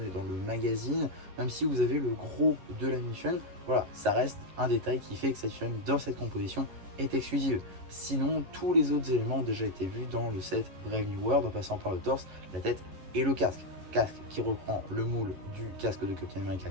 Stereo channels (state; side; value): late; left; 11 ms